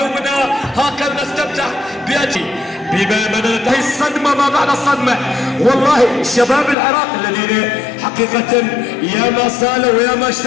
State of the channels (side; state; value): right; drops out; at 6.8 s